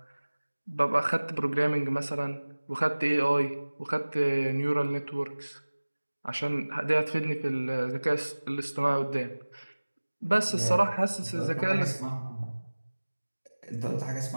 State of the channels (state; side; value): inverted; both; correlation -1.00